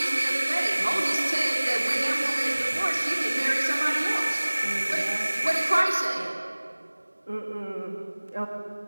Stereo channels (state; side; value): inverted; both; correlation -1.00